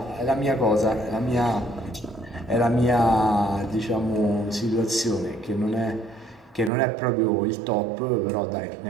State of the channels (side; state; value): left; drops out; at 6.7 s